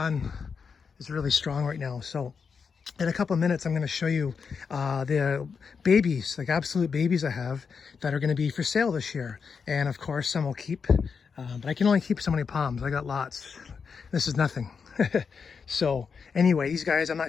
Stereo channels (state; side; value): quieter; right; 5.8 dB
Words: is really strong right now. So in a couple of minutes, I'm going to show you the babies, like absolute babies I have that are going to be for sale this year. And of course, some will keep, but I can only keep so many palms. I got lots. This is nothing. So anyway, these guys, I'm